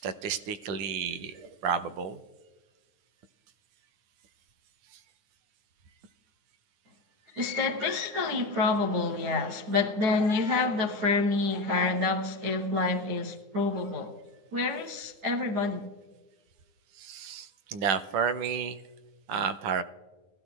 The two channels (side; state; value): left; late; 9.7 ms